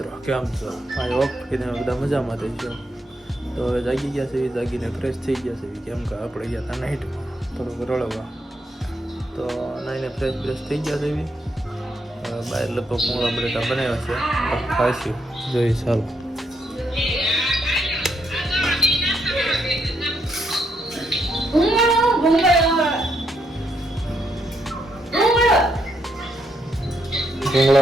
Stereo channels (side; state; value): both; normal; correlation 0.78